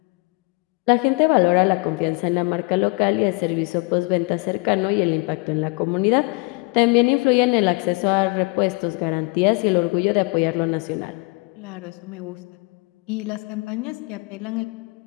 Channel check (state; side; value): quieter; right; 29.2 dB